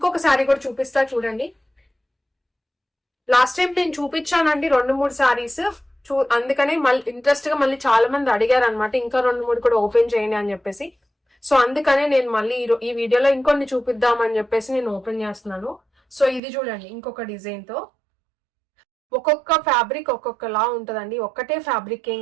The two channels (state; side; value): drops out; left; at 16.4 s